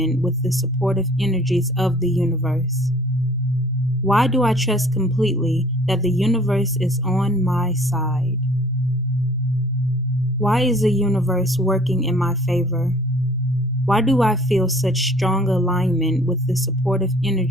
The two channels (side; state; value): both; normal; correlation 0.53